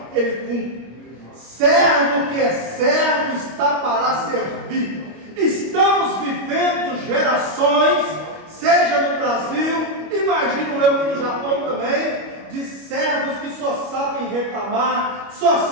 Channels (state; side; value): late; left; 25 ms